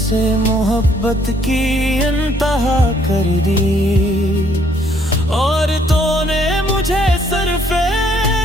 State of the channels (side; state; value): both; normal; correlation 0.66